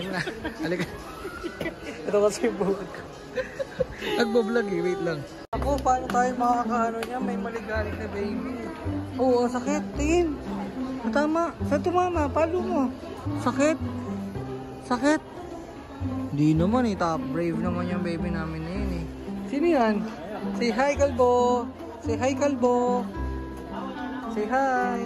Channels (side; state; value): both; identical; correlation 1.00